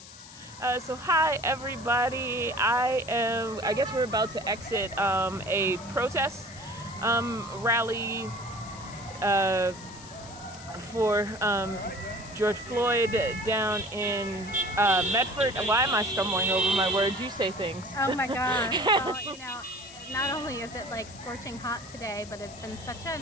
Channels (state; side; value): noise; left; hiss, 17 dB below the sound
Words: So hi everybody. I guess we're about to exit a protest rally for George Floyd down in Medford. Why am I stumbling over my words? You say things. Oh my God. Well, not only is it scorching hot today, but it's been